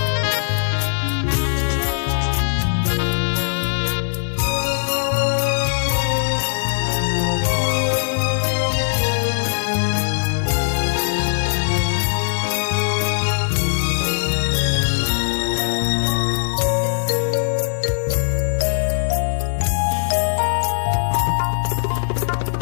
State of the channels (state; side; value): silent; right; digital silence